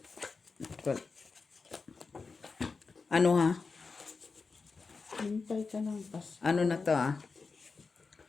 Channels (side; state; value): right; quieter; 4.5 dB